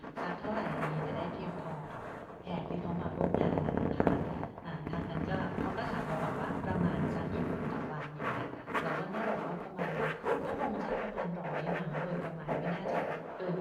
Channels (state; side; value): identical; both; correlation 1.00